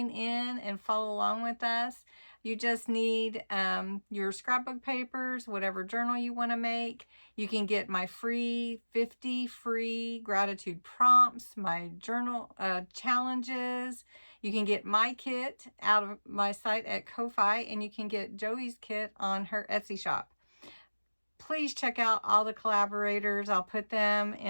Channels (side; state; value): both; inverted; correlation -1.00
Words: in and follow along with us. You just need your scrapbook papers, whatever journal you want to make. You can get my free 50 free gratitude prompts, my journal challenges. You can get my kit out of my site at Ko-Fi, and you can get Joey's kit on her Etsy shop. Please check out all the collaborators. I'll put them